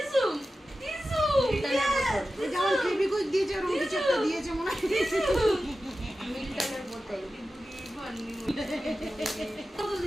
যেমন ফেবিকুইক দিয়েছে ওরকম কিছু একটা দিয়েছে মনে হয়। মিল্টনের বোতল।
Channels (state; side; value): normal; both; correlation 0.94